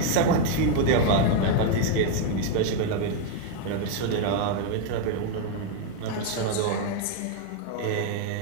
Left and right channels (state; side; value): different; both; correlation 0.00